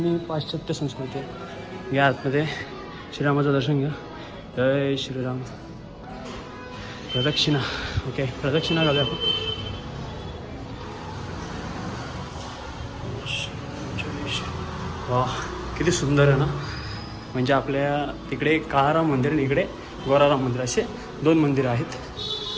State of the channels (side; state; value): both; identical; correlation 1.00